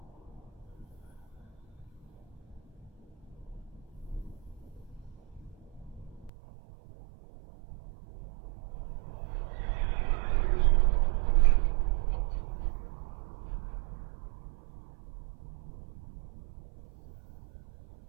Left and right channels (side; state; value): left; drops out; at 6.3 s